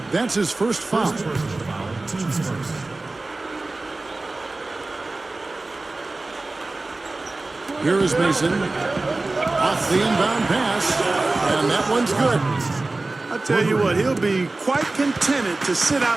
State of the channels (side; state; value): left; quieter; 3.2 dB